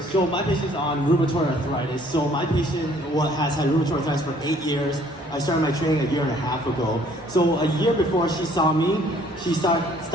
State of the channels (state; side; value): normal; both; correlation 0.59